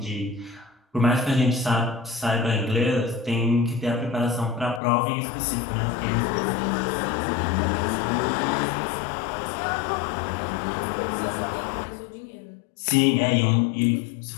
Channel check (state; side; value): drops out; right; at 4.8 s